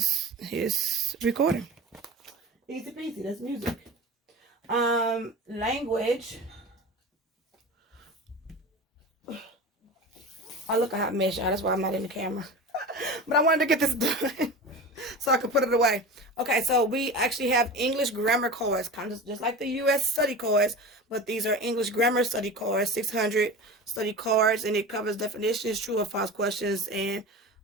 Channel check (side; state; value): both; normal; correlation 0.31